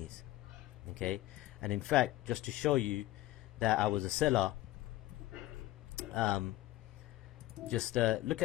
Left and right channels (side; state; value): right; quieter; 16.2 dB